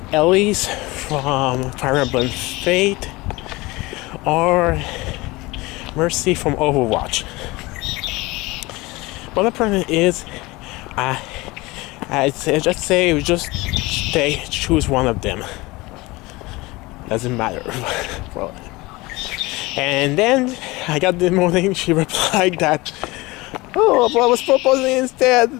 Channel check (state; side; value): quieter; right; 22.2 dB